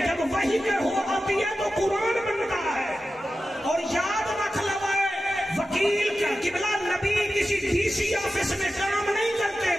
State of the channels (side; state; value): both; normal; correlation 0.93